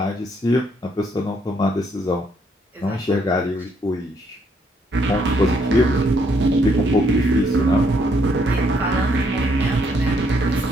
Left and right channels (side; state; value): both; normal; correlation 0.71